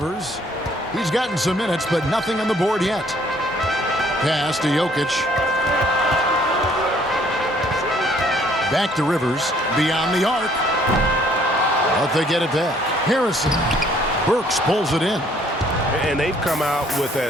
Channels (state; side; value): normal; both; correlation 0.61